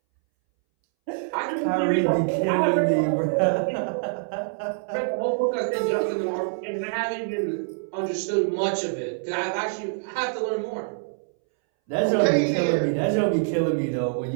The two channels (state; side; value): silent; left; 61 dB below the other